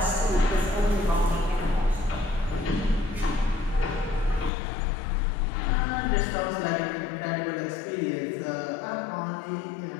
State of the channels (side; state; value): right; drops out; at 4.5 s